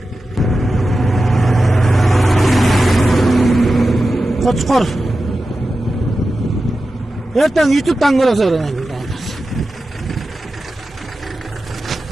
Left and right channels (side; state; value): both; normal; correlation 0.93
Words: Koçkor. Erten YouTube'dan görürsün.